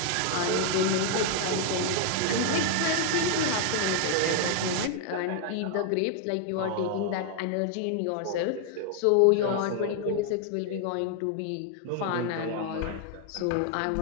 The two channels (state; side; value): different; both; correlation 0.00